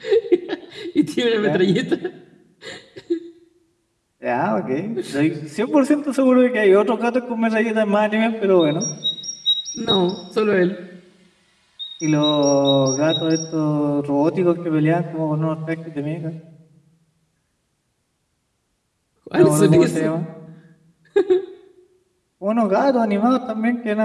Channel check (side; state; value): both; identical; correlation 1.00